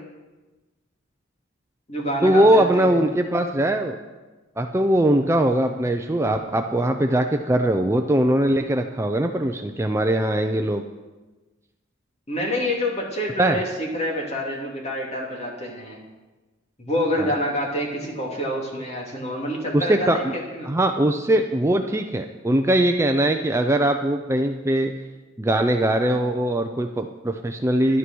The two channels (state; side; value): normal; both; correlation 0.66